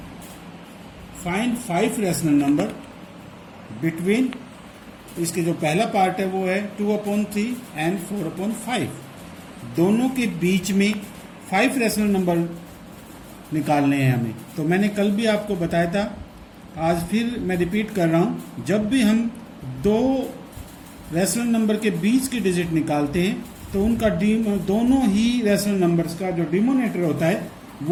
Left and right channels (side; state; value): both; identical; correlation 1.00